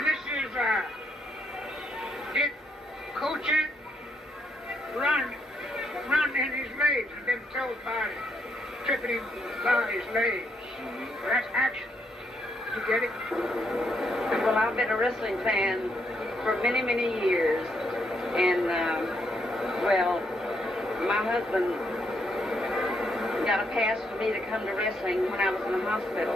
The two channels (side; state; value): both; normal; correlation 0.76